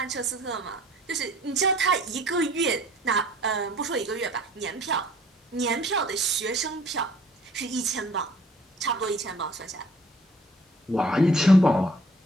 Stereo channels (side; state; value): both; normal; correlation 0.55